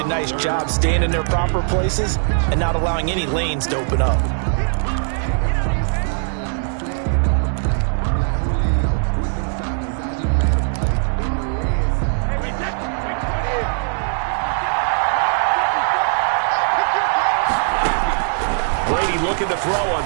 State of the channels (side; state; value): left; silent; digital silence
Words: nice job staying in their proper places and not allowing any lanes to open up. Brady looking to throw on